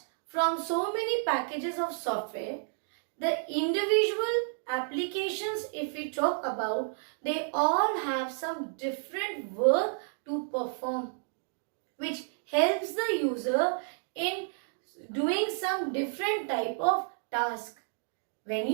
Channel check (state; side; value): silent; left; digital silence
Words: from so many packages of software, the individual applications, if we talk about, they all have some different work to perform, which helps the user in doing some different type of task. When